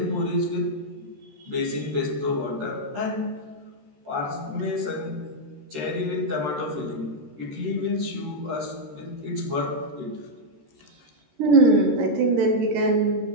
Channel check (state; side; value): late; left; 13 ms